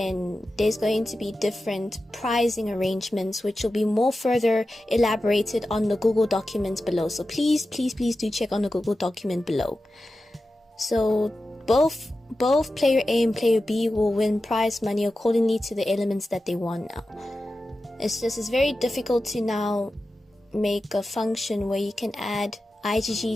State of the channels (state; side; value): normal; both; correlation 0.93